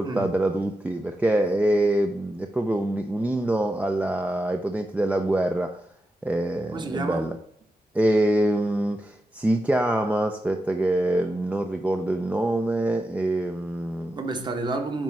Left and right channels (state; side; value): normal; both; correlation 0.88